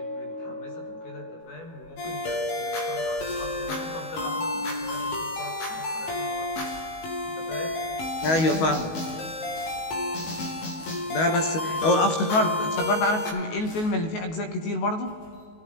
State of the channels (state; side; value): late; right; 19 ms